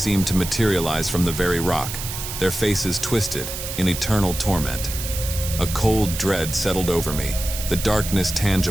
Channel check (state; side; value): noise; right; hiss, 7 dB below the sound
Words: to materialize from the very rock, their faces twisted in eternal torment. A cold dread settled over me, the darkness